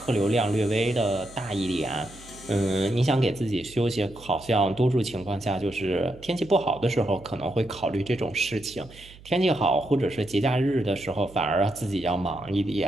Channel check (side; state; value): right; noise; hum, 21 dB below the sound